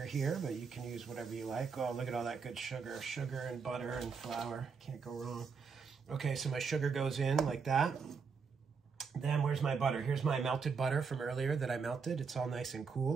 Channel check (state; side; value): quieter; left; 5.6 dB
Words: here, but you can use whatever you like. Oh, look at all that good sugar. Sugar and butter and flour. Can't go wrong. Okay, so my sugar goes in like that. Then where's my butter? Here's my melted butter from earlier that I melted. It's all nice and